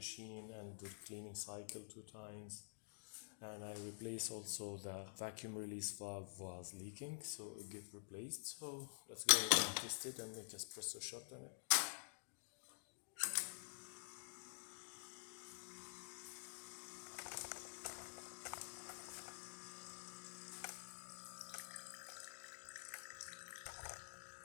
and did cleaning cycle 2 times. And I replaced also the vacuum release valve was leaking, so it get replaced. So let's go and test it and make espresso shot on it.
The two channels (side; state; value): right; silent; digital silence